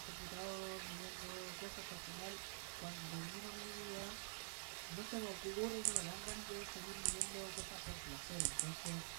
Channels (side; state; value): left; silent; digital silence